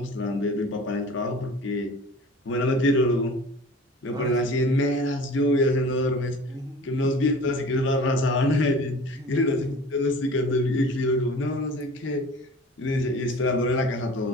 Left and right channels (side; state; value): both; normal; correlation 0.42